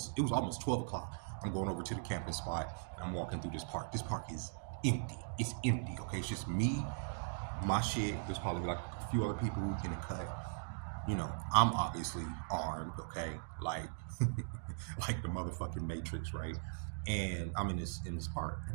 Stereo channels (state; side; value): silent; left; digital silence